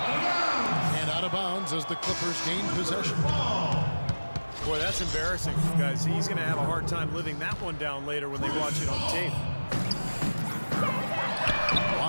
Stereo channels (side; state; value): both; inverted; correlation -1.00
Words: And out of bounds as the Clippers gain possession. Boy, that's embarrassing, guys. He's going to have a hard time living that one down later when they watch it on tape.